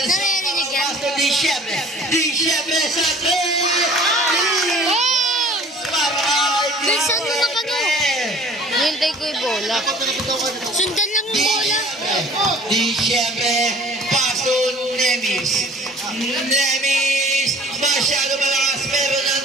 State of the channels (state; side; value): normal; both; correlation 0.49